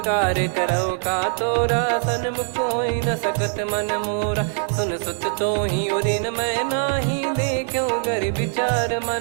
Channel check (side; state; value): left; silent; digital silence